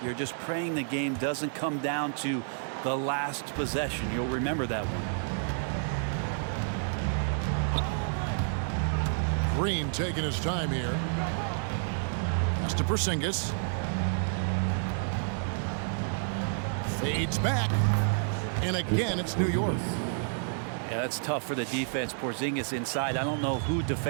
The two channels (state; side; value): silent; left; 58 dB below the other